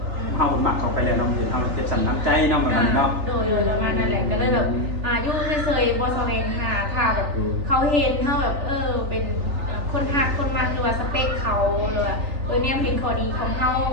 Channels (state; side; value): late; left; 3.4 ms